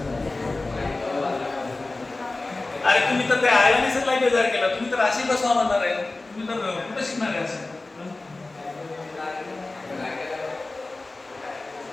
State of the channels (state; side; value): quieter; right; 3.2 dB